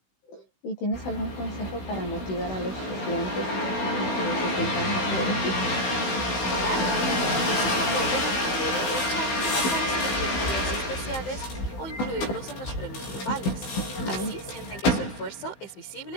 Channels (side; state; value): right; late; 16 ms